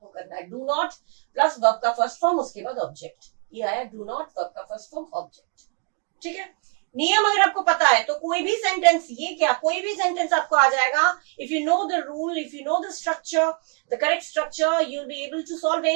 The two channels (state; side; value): quieter; left; 34.4 dB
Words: करना है। डू नॉट प्लस वर्ब का फर्स्ट फॉर्म, उसके बाद ऑब्जेक्ट, ये आया डू नॉट वर्ब का फर्स्ट फॉर्म ऑब्जेक्ट। ठीक है, नियम अगर आपको पता है तो कोई भी सेंटेंस, ये क्या कोई भी सेंटेंस आपको आ जाएगा। If you know the rule, if you know the structure, the correct structure, you will be able to solve